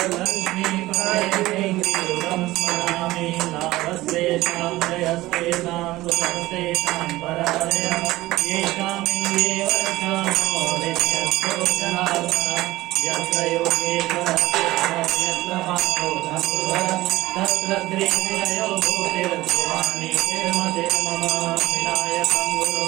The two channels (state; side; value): quieter; left; 17.9 dB